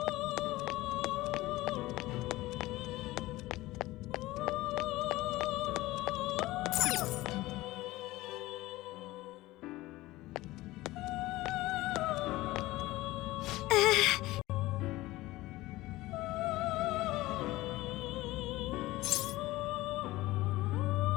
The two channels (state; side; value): quieter; right; 18.4 dB